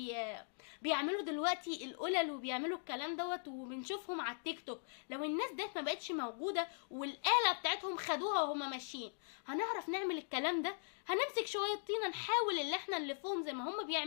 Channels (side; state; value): right; silent; digital silence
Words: بيعملوا دلوقتي القلل وبيعملوا الكلام دوت وبنشوفهم على التيك توك. لو الناس ديت ما بقتش موجوده والآلة بتاعتهم خدوها وهما ماشيين، هنعرف نعمل الكلام ده؟ هنمسك شويه طينه نحاول اللي احنا نلفهم زي ما هما